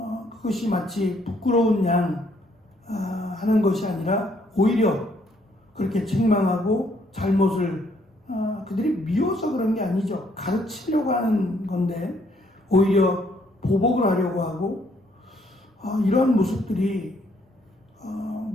그것이 마치 부끄러운 양 하는 것이 아니라 오히려 그렇게 책망하고 잘못을 그들이 미워서 그런 게 아니죠. 가르치려고 하는 건데 오히려 보복을 하려고 하고 이런 모습들이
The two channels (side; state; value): both; normal; correlation 0.68